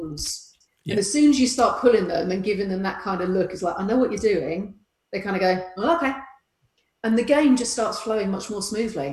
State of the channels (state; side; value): identical; both; correlation 1.00